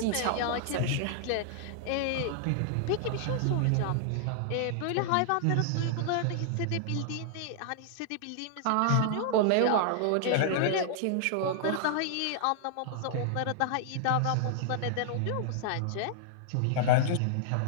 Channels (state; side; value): different; both; correlation -0.01